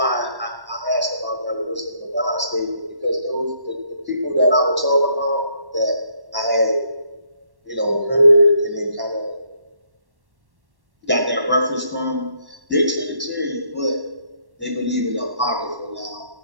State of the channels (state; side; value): late; left; 1.1 ms